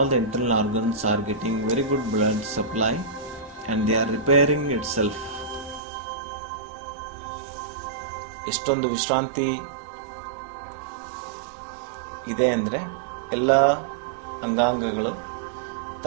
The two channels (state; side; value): drops out; left; at 5.8 s